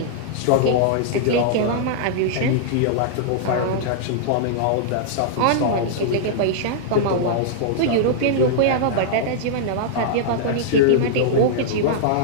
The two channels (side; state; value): both; different; correlation -0.02